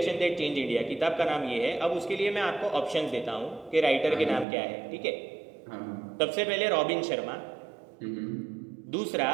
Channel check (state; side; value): drops out; left; at 4.5 s